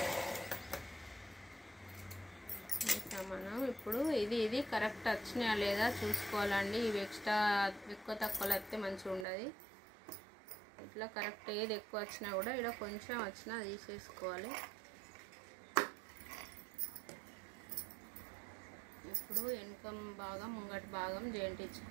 మనం ఇప్పుడు ఇది కరెక్ట్ వచ్చినాయా లేదా చూసుకోవాలండి. ఇవి ఎక్స్ట్రా ఎక్కువ తక్కువలు వస్తే మంచిగా ఉండదు. ఇట్లా కరెక్ట్ ఏది ఎక్కువ వచ్చినా కూడా ఇలా కొంచెం వచ్చినా తీసేసుకోవాలి. ఇప్పుడు వెనుక భాగం ముంగటి భాగం జాయింట్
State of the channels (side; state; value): left; drops out; at 9.2 s